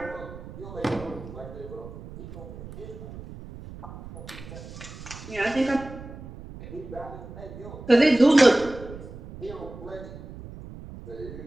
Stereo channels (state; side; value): noise; right; rumble, 13 dB below the sound